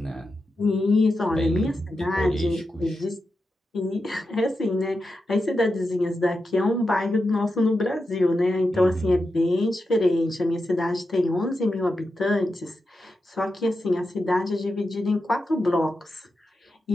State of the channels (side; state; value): both; normal; correlation 0.89